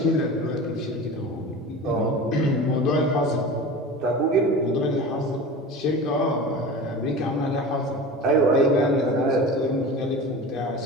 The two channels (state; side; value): normal; both; correlation 0.33